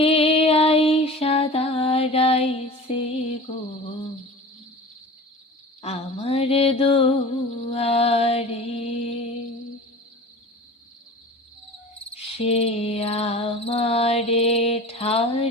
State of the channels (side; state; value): both; normal; correlation 0.37